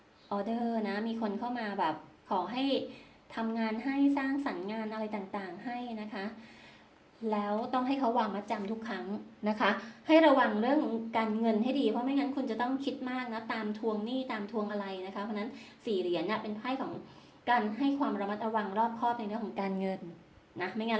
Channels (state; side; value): identical; both; correlation 1.00